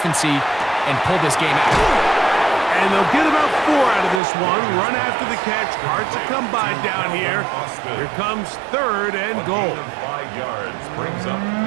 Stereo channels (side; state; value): left; drops out; at 4.2 s